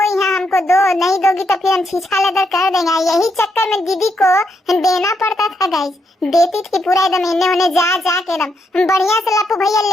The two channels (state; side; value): normal; both; correlation 0.79